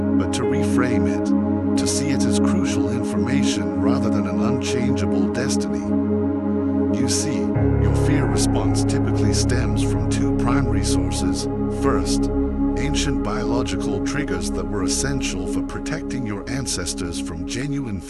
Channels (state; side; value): identical; both; correlation 1.00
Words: to reframe it, to see it as crucial information rather than an unchangeable destiny. You see, your fear response typically stems from two primary sources. First, ancient biological triggers that were essential for protecting your ancestors from genuine